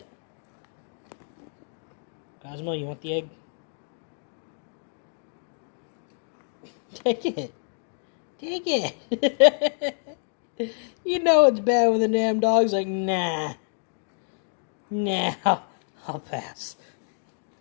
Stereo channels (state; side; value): silent; right; 60 dB below the other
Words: Cosmo, you want the egg? Take it. Take it. You know it's bad when the damn dog's like, nah. Nah, I'll pass.